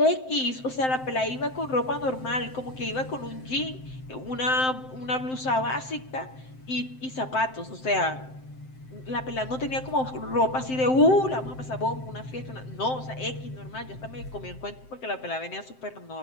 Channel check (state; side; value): late; right; 7.7 ms